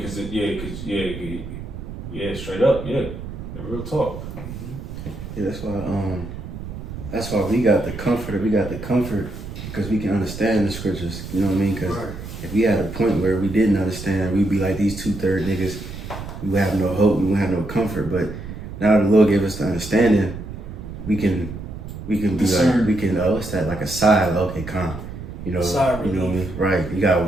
Yeah, straight up, yeah, the real talk. Yeah, that's why we got the comfort. We got the comfort because we can understand the scriptures. You know what I mean? Because if we had a point where we didn't understand, we'd be like these 2/3 niggas. We would have no hope. We would have no comfort. But now the Lord gave us the understanding. We can be discern. like, we can, what's that, like a sigh, okay, calm. You know, you know what I mean? Right. You gotta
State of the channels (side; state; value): right; noise; rumble, 10 dB below the sound